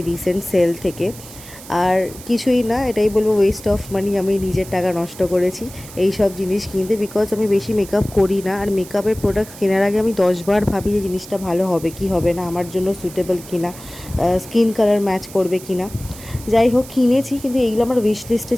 রিসেন্ট সেল থেকে। আর কিছুই না, এটাই বলবো ওয়েস্ট অফ মানি। আমি নিজের টাকা নষ্ট করেছি এই সব জিনিস কিনতে, বিকজ আমি বেশি মেকআপ করি না। আর মেকআপের প্রোডাক্ট কেনার আগে আমি 10বার ভাবি যে জিনিসটা ভালো হবে কি হবে না, আমার জন্য সুইটেবল কিনা, স্কিন কালার ম্যাচ করবে কিনা। যাই হোক, কিনেছি, কিন্তু এইগুলো আমার উইশ লিস্টে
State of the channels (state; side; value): noise; right; hiss, 17 dB below the sound